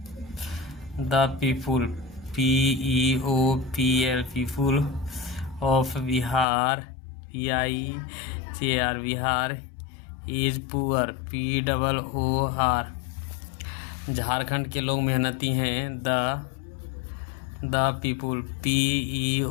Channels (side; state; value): right; drops out; at 6.5 s